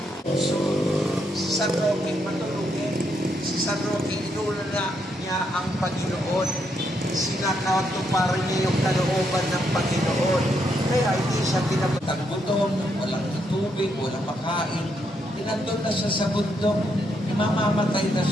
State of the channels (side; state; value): both; normal; correlation 0.77